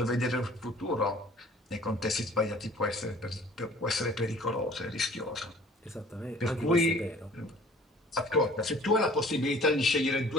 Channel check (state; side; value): normal; both; correlation 0.50